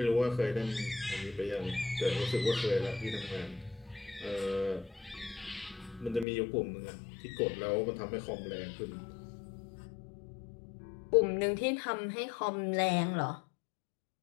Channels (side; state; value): right; drops out; at 6.2 s